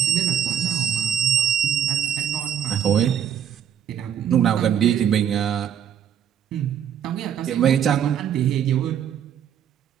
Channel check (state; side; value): quieter; left; 8.9 dB